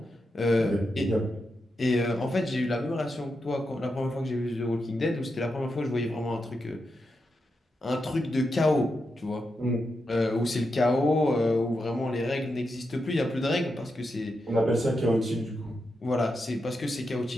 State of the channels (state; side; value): normal; both; correlation 0.86